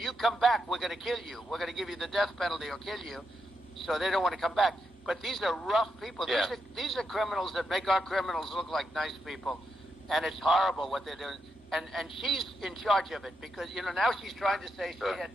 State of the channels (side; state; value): both; normal; correlation 0.83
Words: you come back, we're going to kill you. We're going to give you the death penalty or kill you. So they don't want to come back. But these are rough people. Yeah. These are criminals that make our criminals look like nice people. And it's horrible what they're doing. And she's in charge of it because, now she's trying to say she